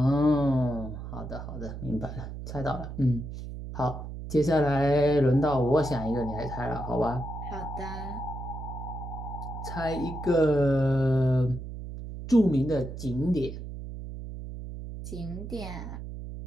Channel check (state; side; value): noise; right; hum, 9 dB below the sound